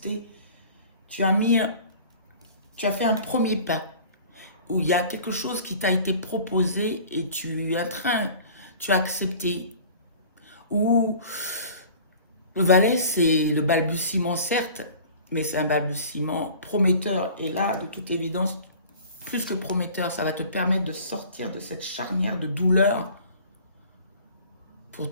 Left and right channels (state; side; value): inverted; both; correlation -0.45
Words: Tu as fait un premier pas où il y a quelque chose qui t'a été proposé et tu as accepté. Ou le valet, c'est le balbutiement, certes, mais c'est un balbutiement prometteur. Et là, de toute évidence, plus que prometteur, ça va te permettre de sortir de cette charnière de douleur pour